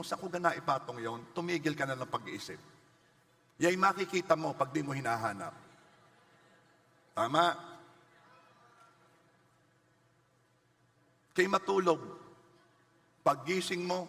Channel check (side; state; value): both; identical; correlation 1.00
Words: sa kuga na ipatong yon, tumigil ka na ng pag-iisip. Yay makikita mo pag di mo hinahanap. Tama? Kay matulog, paggising